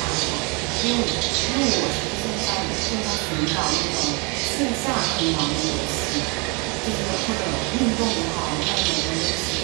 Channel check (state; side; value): quieter; left; 30.8 dB